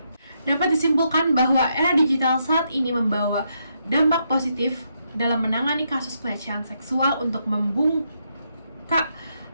Dapat disimpulkan bahwa era digital saat ini membawa dampak positif dalam menangani kasus pelecehan seksual untuk membuka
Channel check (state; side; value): inverted; both; correlation -0.79